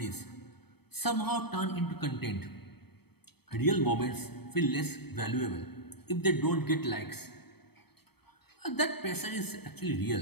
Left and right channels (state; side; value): late; right; 0.97 ms